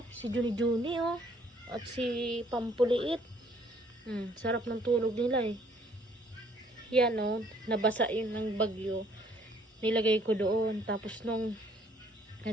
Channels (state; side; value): normal; both; correlation 0.62